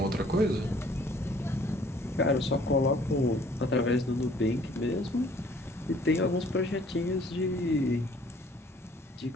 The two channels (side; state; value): both; normal; correlation 0.58